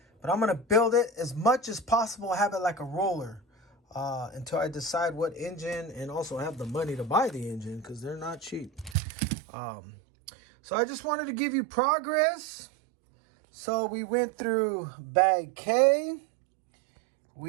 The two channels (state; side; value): drops out; left; at 9.0 s